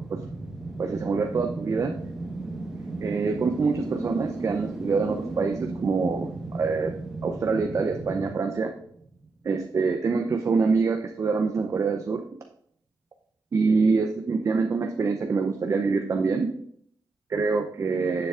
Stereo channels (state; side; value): quieter; left; 4.1 dB